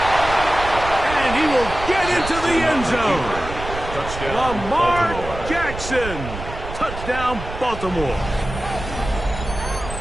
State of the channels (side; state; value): right; noise; rumble, 9 dB below the sound